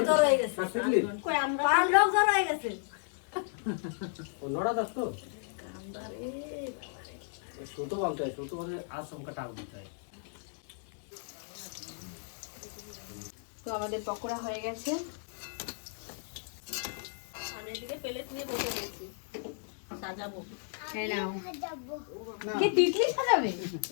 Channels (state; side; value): silent; right; digital silence